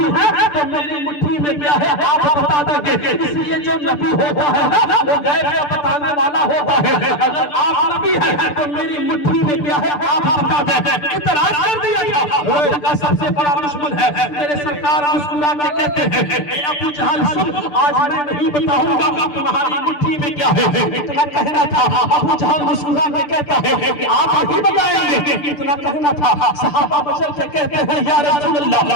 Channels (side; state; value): right; late; 6.8 ms